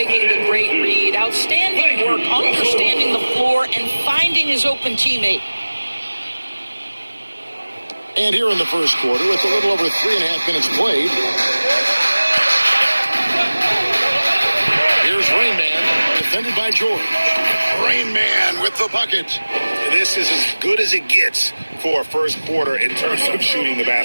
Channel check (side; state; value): both; inverted; correlation -1.00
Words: the great read. Outstanding work, understanding the floor and finding his open teammate. And here in the first quarter, with a little over 3.5 minutes played. Here's Rain Man, defended by George. Rain Man with the bucket. This is as good as it gets for a first quarter in terms of shooting the